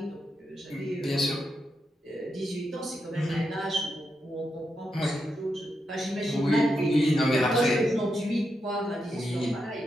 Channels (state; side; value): normal; both; correlation 0.85